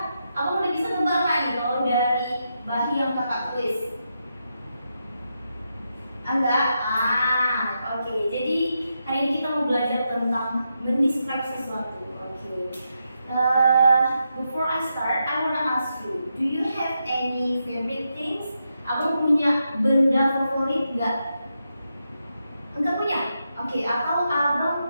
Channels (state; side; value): inverted; both; correlation -0.85